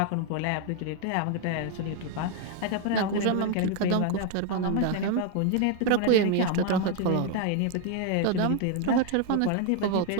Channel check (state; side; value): different; both; correlation 0.00